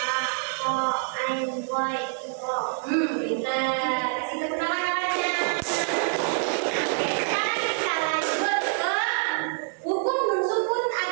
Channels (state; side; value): silent; left; 58 dB below the other